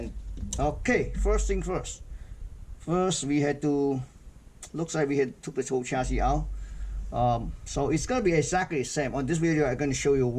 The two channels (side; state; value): both; identical; correlation 1.00